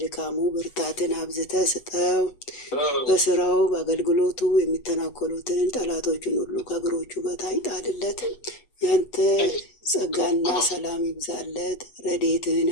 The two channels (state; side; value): late; right; 8.1 ms